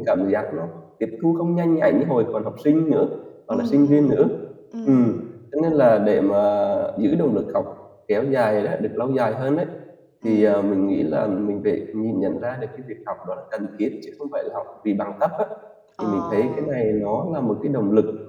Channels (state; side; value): identical; both; correlation 1.00